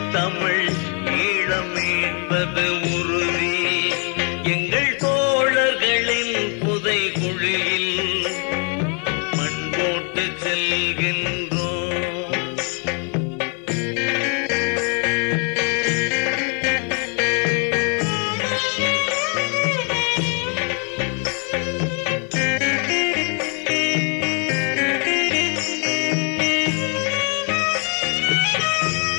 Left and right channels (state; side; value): quieter; right; 39.4 dB